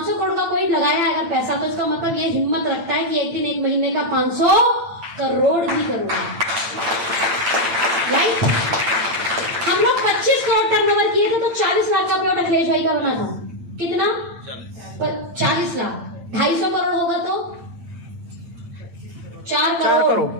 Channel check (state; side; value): late; left; 8.8 ms